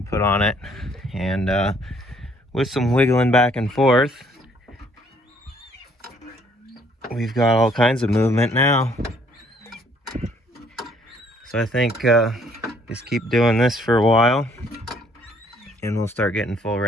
put on it, and with some wiggling back and forth, we've got all kinds of movement now. So I think just keep doing this for a while and we'll start getting full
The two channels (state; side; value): normal; both; correlation 0.63